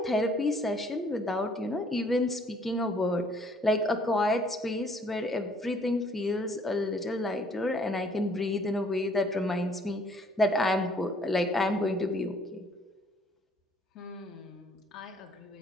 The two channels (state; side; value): normal; both; correlation 0.61